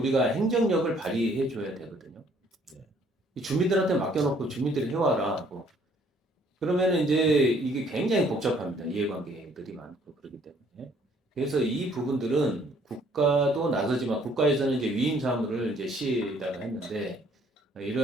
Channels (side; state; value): both; normal; correlation 0.62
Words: 행정력을 발휘해 줘야 되거든요. 이 주민들한테 맡겨놓고 주민들이 해와라 하고 그러면은 이제 이게 굉장히 복잡합니다. 이해관계들이 많고 그렇기 때문에. 그래서 이 부분들은 국가도 나서지만 국가에서는 이제 위임 사무를 이제 시에다가 했는데